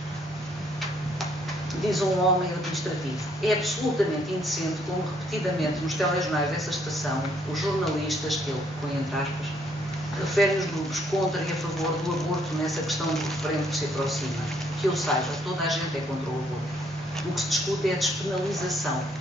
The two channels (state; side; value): normal; both; correlation 0.68